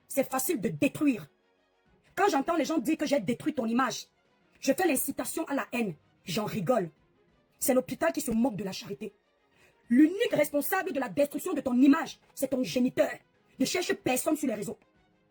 c'est facile de détruire. Quand j'entends les gens dire que j'ai détruit ton image, je fais l'incitation à la haine. J'en rigole. C'est l'hôpital qui se moque de la charité. L'unique responsable de la destruction de ton image, c'est ton géniteur. Ne cherche personne sur les réseaux.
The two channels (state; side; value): identical; both; correlation 1.00